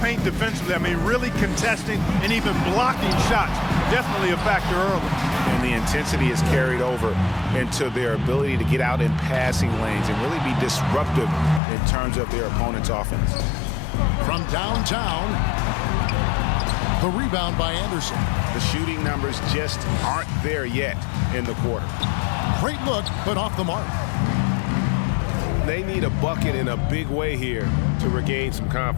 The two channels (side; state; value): right; drops out; at 11.6 s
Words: defensively. I mean, really contesting and even blocking shots. Definitely a factor early. And the intensity is carried over into their ability to get out in passing lanes and really be disruptive in terms of their opponent's offense. From downtown, the rebound by Anderson. The shooting numbers just aren't there yet in the quarter. Great look, but off the mark. They need a bucket in a big way here to regain some